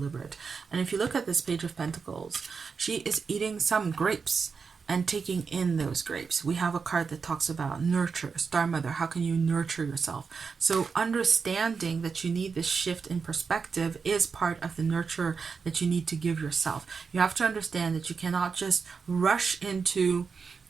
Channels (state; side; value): quieter; left; 5.4 dB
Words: And if you look at this Page of Pentacles, she is eating some grapes and taking in those grapes. We have a card that talks about nurture, Star Mother. How can you nurture yourself? So understanding that you need this shift in perspective is part of the nurture that you need to give yourself. You have to understand that you cannot just rush into